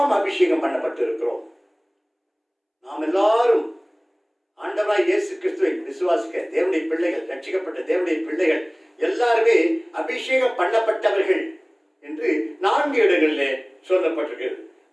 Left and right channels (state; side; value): identical; both; correlation 1.00